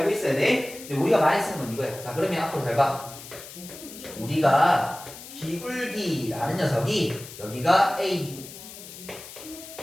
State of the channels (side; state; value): left; noise; hiss, 15 dB below the sound